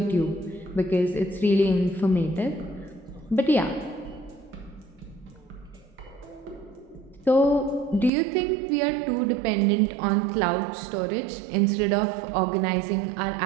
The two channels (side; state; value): left; drops out; at 8.1 s